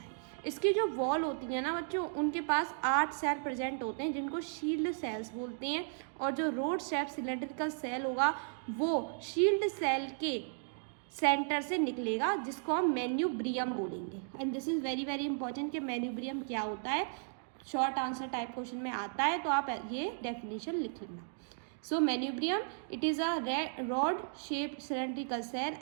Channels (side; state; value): left; silent; digital silence